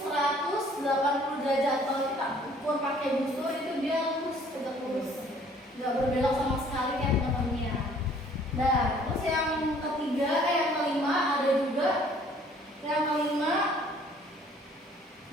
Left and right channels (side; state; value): both; normal; correlation 0.57